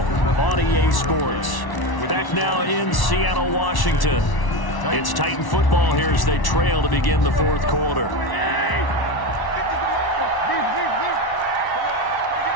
on EA Sports. Back now in Seattle, Washington. It's Titan football here as they trail to begin the 4th quarter.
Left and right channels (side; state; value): right; late; 1.1 ms